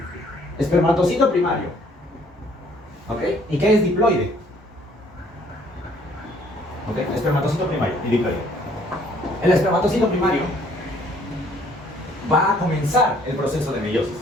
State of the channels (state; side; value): normal; both; correlation 0.61